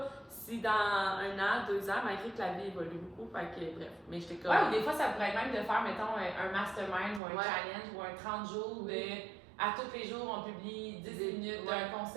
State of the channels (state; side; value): drops out; left; at 7.2 s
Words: si dans 1 an, 2 ans, malgré que la vie évolue beaucoup, fait que, bref. Mais j'étais comme. Ouais, ou des fois, ça pourrait être même de faire, mettons, un mastermind ou un challenge ou un 30 jours de. À tous les jours, on publie 10 minutes d'un